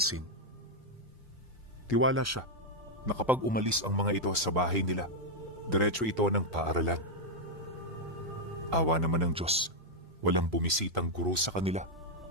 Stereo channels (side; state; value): both; normal; correlation 0.00